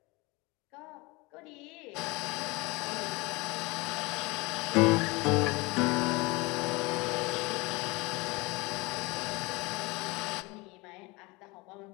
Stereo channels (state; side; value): quieter; right; 24.9 dB